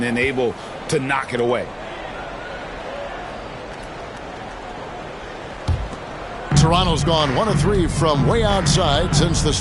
then able to knock it away. Toronto's gone 1 of 3 from way outside since the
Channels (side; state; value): both; identical; correlation 1.00